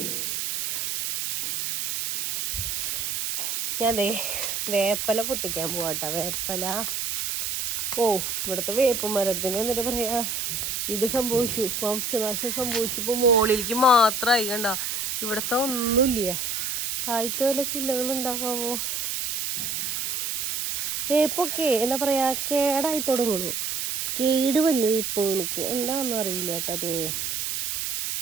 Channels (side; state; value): right; noise; hiss, 2 dB below the sound